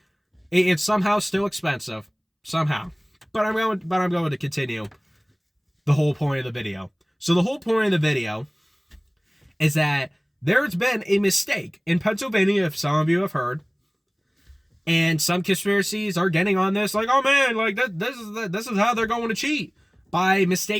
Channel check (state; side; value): identical; both; correlation 1.00